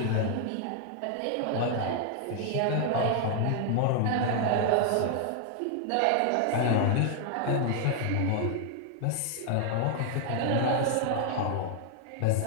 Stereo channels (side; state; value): both; different; correlation 0.00